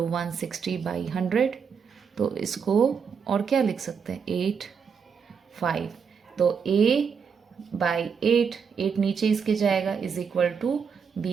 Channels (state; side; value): quieter; left; 6.4 dB